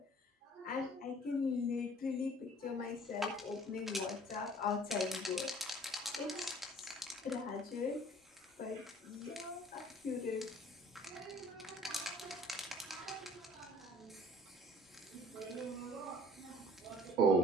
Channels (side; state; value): both; normal; correlation 0.51